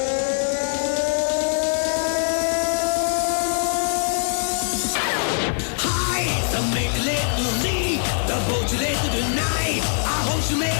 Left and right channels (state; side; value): silent; right; digital silence